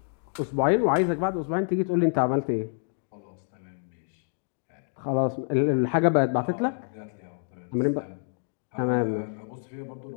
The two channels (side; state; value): right; silent; digital silence